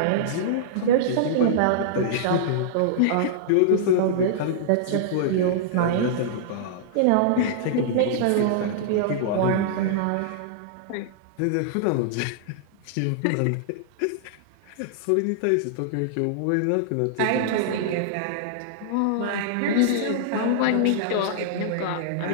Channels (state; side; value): different; both; correlation -0.02